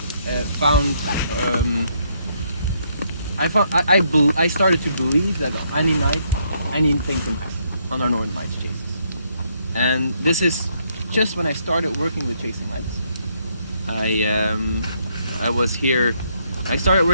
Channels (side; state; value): both; inverted; correlation -0.73